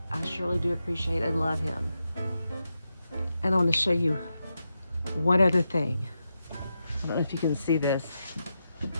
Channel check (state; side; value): inverted; both; correlation -0.87